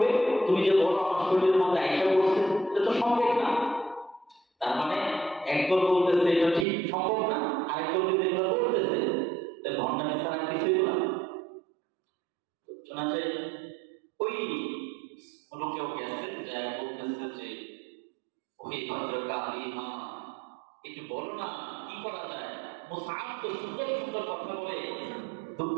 তুমি যে বড় আমার শরীরের মধ্যে আইসা করছে, এটা তো সম্ভব না। তার মানে একদল বলতেছে এটা ঠিক সম্ভব না, আরেকদল কিন্তু এগুলো বলতেছে ভণ্ডামি ছাড়া কিছুই না। শোনা যায় ওই লোকেও গেছে, যা বলতেছে যে ওই ভদ্রকালিমা একটু বলো না কি করা যায়। মুসআব তো সুন্দর সুন্দর কথা বলে,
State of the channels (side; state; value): left; drops out; at 6.7 s